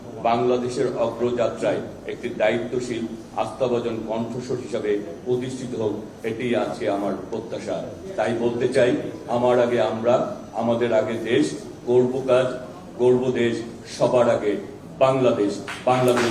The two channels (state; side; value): identical; both; correlation 1.00